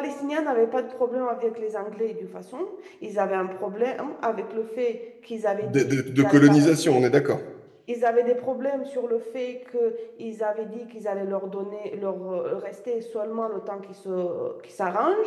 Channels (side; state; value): both; identical; correlation 1.00